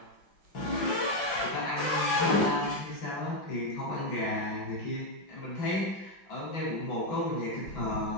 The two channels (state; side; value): late; right; 5.6 ms